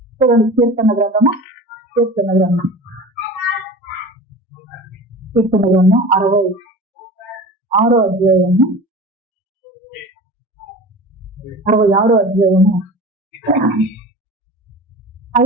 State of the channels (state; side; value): normal; both; correlation 0.35